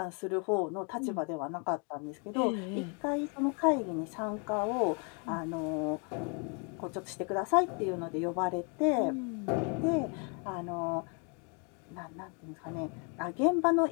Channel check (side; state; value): right; quieter; 36.4 dB